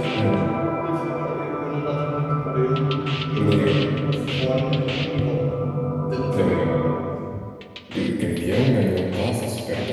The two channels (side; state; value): both; identical; correlation 1.00